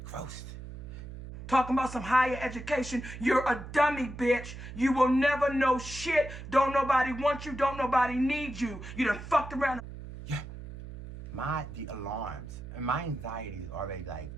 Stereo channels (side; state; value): right; noise; hum, 11 dB below the sound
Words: Gross. Talking about some higher education. You're a dummy, bitch. You will never know shit. Don't nobody want you. Don't nobody need you. You done fucked around. Yeah. The alarms and my anxiety is already like